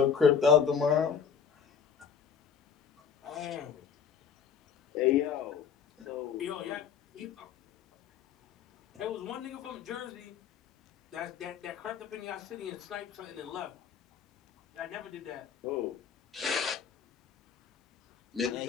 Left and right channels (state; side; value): quieter; right; 7.0 dB